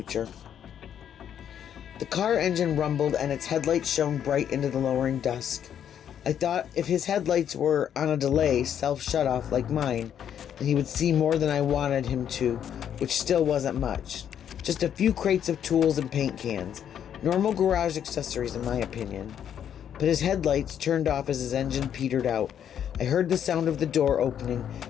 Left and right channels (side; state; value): right; quieter; 9.3 dB